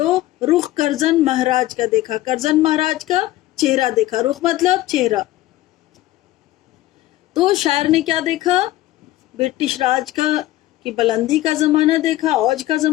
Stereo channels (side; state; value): right; quieter; 16.0 dB